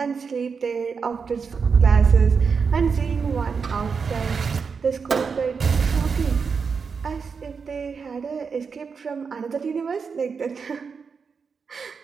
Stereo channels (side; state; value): left; quieter; 5.6 dB